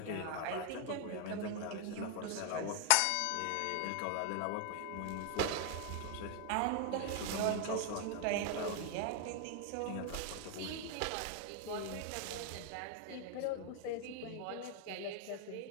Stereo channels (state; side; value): different; both; correlation 0.00